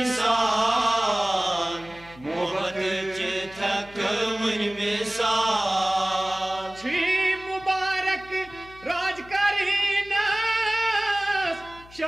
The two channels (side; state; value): left; noise; hum, 22 dB below the sound